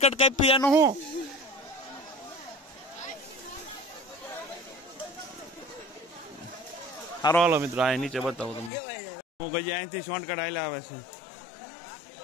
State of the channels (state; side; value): drops out; right; at 8.7 s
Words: કાપી એનું શું. સારો હાલો મિત્રો, આ નીચે બતાવું તમને. હું કઈ અહીંથી શોર્ટકટ હાલ્યા આવે છે.